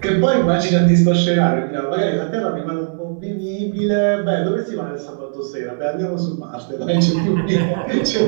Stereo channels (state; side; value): silent; left; digital silence